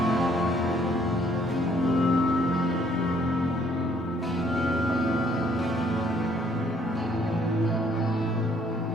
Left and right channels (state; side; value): normal; both; correlation 0.64